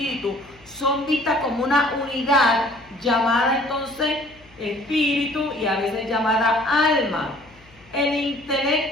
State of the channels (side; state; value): left; noise; hum, 27 dB below the sound